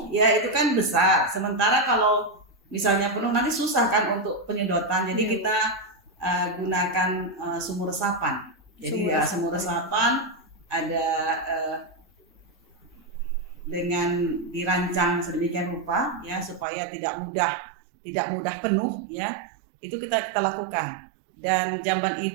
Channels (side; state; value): left; drops out; at 16.7 s